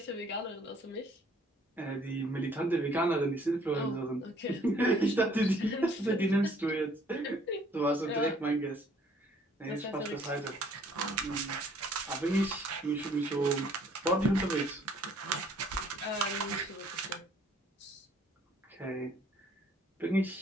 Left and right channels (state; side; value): normal; both; correlation 0.60